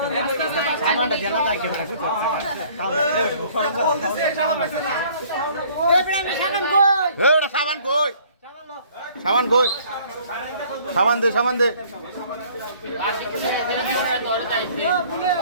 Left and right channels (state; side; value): inverted; both; correlation -0.56